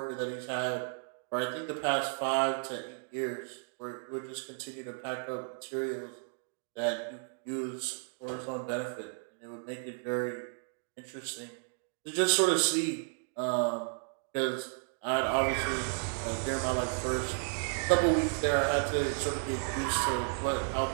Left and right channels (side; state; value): left; silent; 55 dB below the other